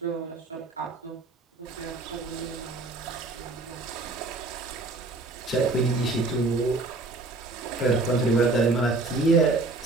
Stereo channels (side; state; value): left; quieter; 3.4 dB